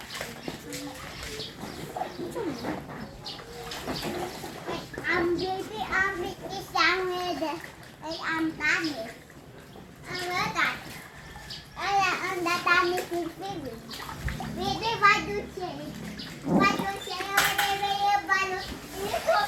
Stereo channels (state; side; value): identical; both; correlation 1.00